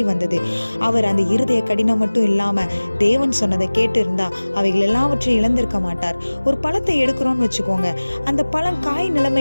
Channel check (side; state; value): both; inverted; correlation -1.00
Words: வந்தது. அவர் அந்த இருதய கடினம் மட்டும் இல்லாம தேவன் சொன்னதை கேட்டு இருந்தா அவைகள் எல்லாவற்றையும் இழந்திருக்க மாட்டார். ஒரு பழத்தை எடுக்கிறோம்னு வச்சுக்கோங்க, அந்த பழம் காய்